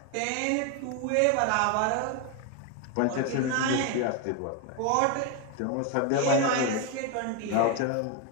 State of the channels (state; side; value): different; both; correlation 0.01